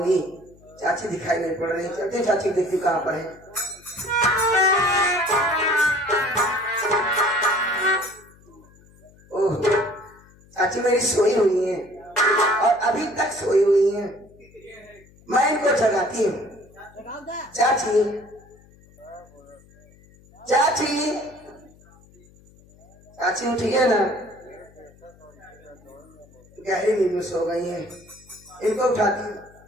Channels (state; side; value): noise; left; hum, 26 dB below the sound